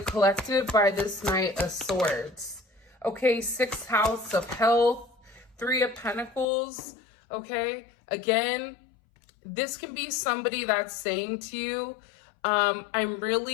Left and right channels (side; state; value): right; drops out; at 6.5 s